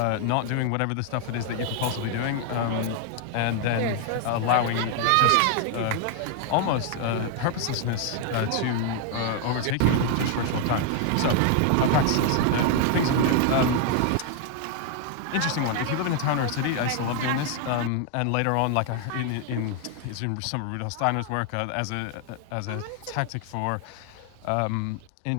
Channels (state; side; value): different; both; correlation 0.00